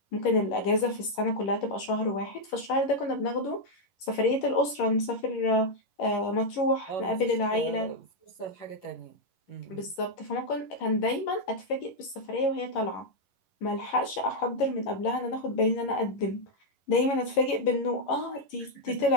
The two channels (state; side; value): late; right; 11 ms